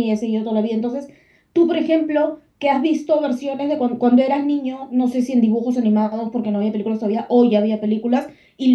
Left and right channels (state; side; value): identical; both; correlation 1.00